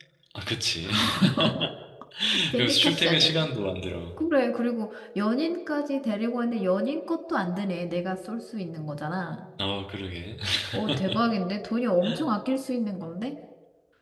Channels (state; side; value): identical; both; correlation 1.00